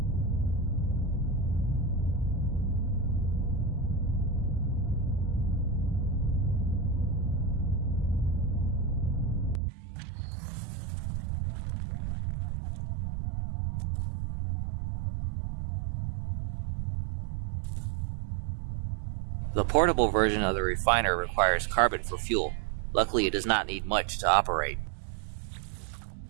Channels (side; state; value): left; drops out; at 9.6 s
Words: The portable version of the refiner requires carbon for fuel. Luckily, it does not need much to operate.